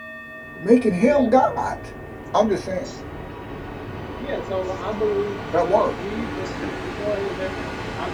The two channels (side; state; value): both; identical; correlation 1.00